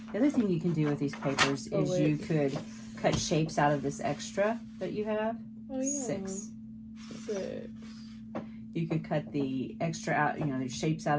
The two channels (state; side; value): identical; both; correlation 1.00